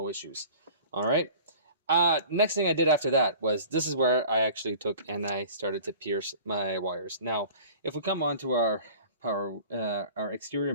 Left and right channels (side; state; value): both; inverted; correlation -0.45